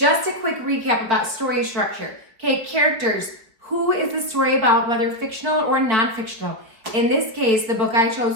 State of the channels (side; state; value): left; late; 4.8 ms